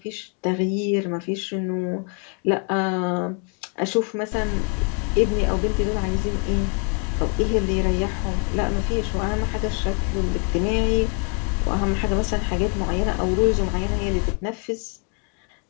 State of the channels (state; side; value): quieter; right; 37.3 dB